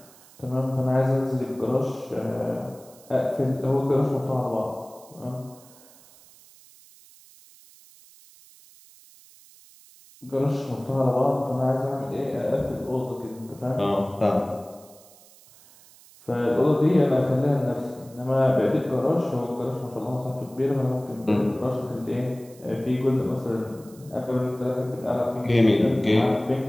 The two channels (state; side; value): noise; right; hiss, 24 dB below the sound